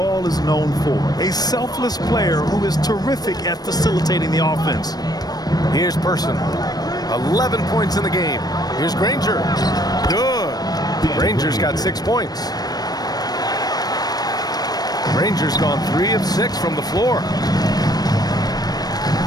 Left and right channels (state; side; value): late; right; 0.19 ms